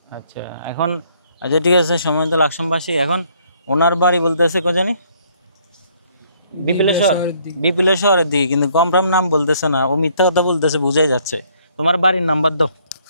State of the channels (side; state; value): both; inverted; correlation -0.65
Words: আচ্ছা, এখন আচ্ছা ঠিক আছে, সম্মানিত লাকসামবাসী, এখন ওনার বাড়ি বলতেছে কোজানে? বিপিলেশ্বর। বিপিলেশ্বরের দিকে, কিন্তু কমফার্ম নাম বলতেছে না, ও মিথ্যা কথা বলতেছে, বুঝাই যাচ্ছে। তোমার বাড়ির নাম্বার দাও,